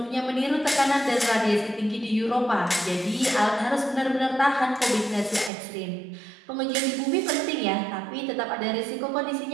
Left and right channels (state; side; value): drops out; left; at 5.5 s